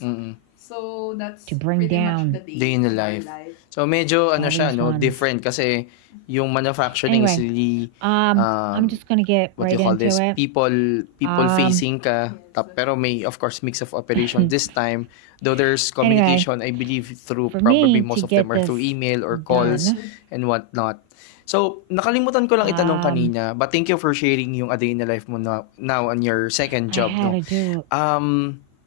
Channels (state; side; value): different; both; correlation 0.00